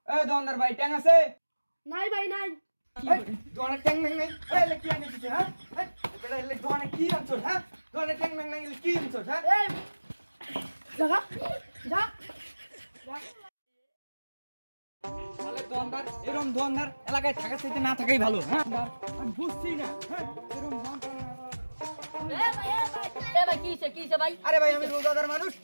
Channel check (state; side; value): inverted; both; correlation -1.00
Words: এই দোকানদার ভাই ট্যাং আছে নাই ভাই নাই। এই দোকানে ট্যাং নাই নাই এই লে কি আনিছিস হ্যাঁ এই বেটা লে দোকানে কি আনছস হ্যাঁ দোকানে ট্যাং নাই নাই কি আনছস হ্যাঁ এই জাগা যা তাহলে দোকানদার এরকম দোকানদার এলাকায় থাকার চাইতে না থাকাই ভালো হ্যাঁ আমি বুঝছি না হ্যাঁ এরকম কিছে ভাই আরে ভাই আমি রোজাদার মানুষ